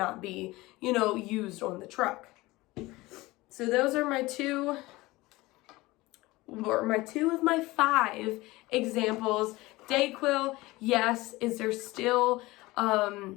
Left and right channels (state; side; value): quieter; right; 20.3 dB